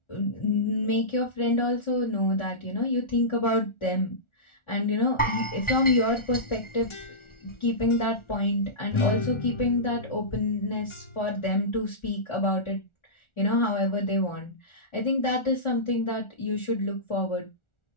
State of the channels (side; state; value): right; late; 1.4 ms